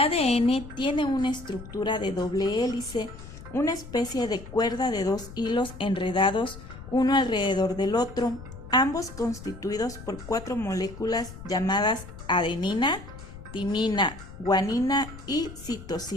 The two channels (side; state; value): left; noise; rumble, 14 dB below the sound